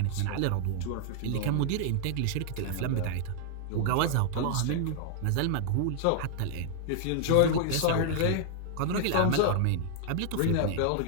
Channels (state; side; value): different; both; correlation 0.00